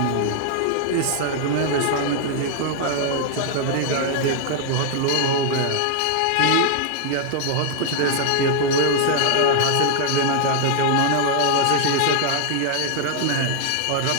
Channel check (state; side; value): different; both; correlation 0.00